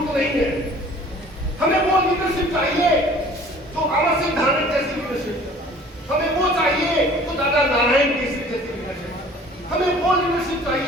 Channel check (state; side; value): normal; both; correlation 0.50